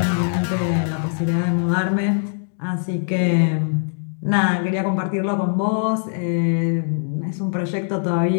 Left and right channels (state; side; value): silent; right; digital silence